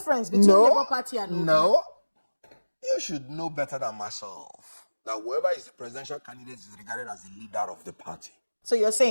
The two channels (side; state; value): both; inverted; correlation -1.00